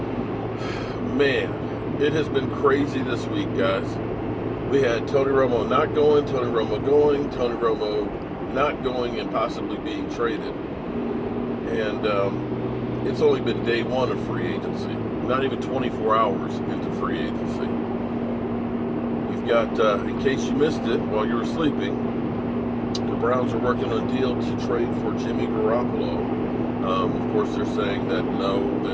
Man, it has been crazy this week, guys. We had Tony Romo not going, Tony Romo going, Tony Romo not going, and possibly being traded. And it's only been day one of free agency. Not even 24 hours into free agency. You've got, in case you missed it while you were sleeping, the Browns are working on a deal to trade for Jimmy Garoppolo. Of course, they're saying that no,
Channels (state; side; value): identical; both; correlation 1.00